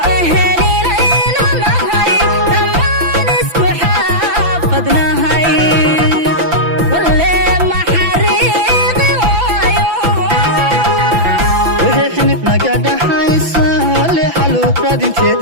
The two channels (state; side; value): late; left; 5.8 ms